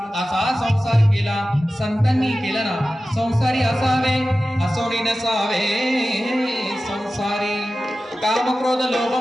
असा संसार केला. संतांनी केला ना. संसारी असावे असोनी नसावे. संसारी काम क्रोध लोभ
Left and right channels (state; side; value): normal; both; correlation 0.95